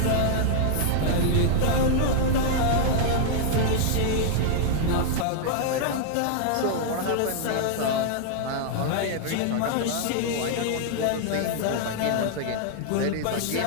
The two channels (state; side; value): different; both; correlation 0.00